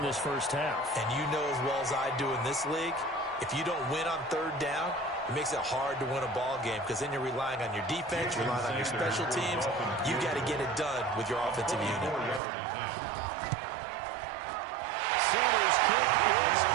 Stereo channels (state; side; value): drops out; left; at 12.4 s